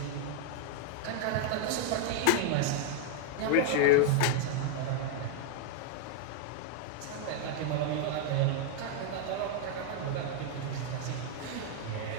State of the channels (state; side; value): different; both; correlation 0.00